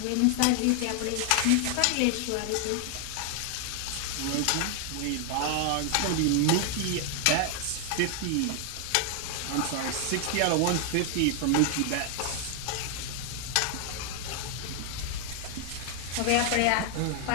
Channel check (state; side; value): different; both; correlation 0.00